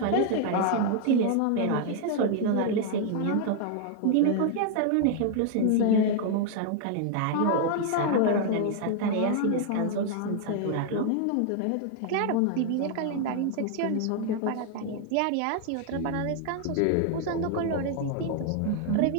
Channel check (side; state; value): both; different; correlation 0.00